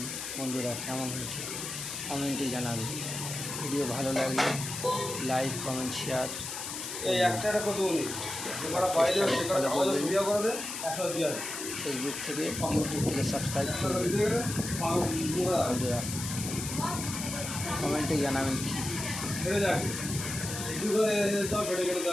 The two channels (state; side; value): noise; left; hiss, 6 dB below the sound